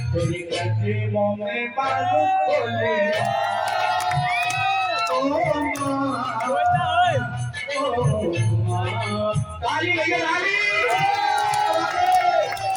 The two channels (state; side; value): identical; both; correlation 1.00